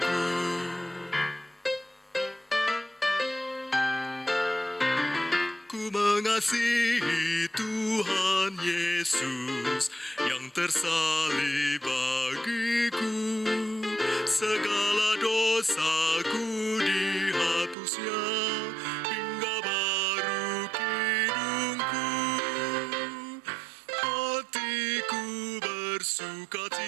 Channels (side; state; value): left; drops out; at 17.8 s